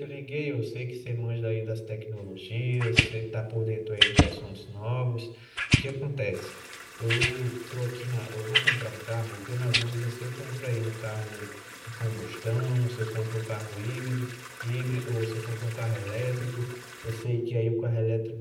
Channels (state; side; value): identical; both; correlation 1.00